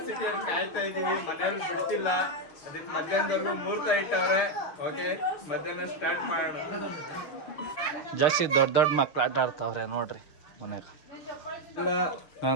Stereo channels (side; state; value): right; late; 6.5 ms